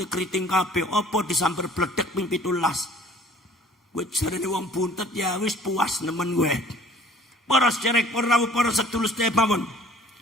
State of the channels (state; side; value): normal; both; correlation 0.52